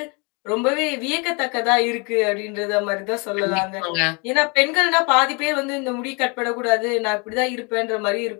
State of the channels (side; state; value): right; quieter; 32.1 dB